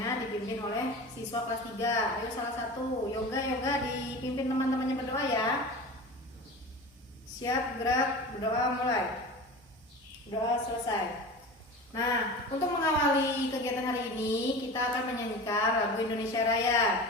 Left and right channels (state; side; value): normal; both; correlation 0.33